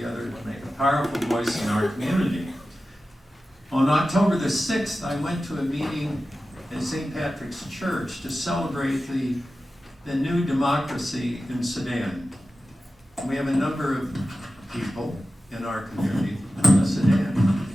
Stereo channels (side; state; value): both; normal; correlation 0.94